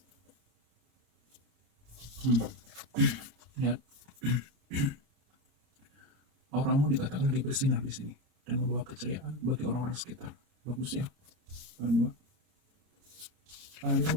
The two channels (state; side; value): late; left; 30 ms